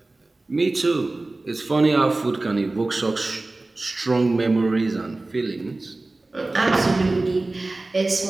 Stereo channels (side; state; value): left; quieter; 3.1 dB